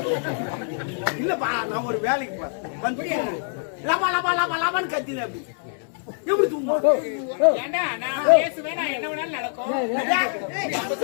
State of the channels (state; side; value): silent; right; 62 dB below the other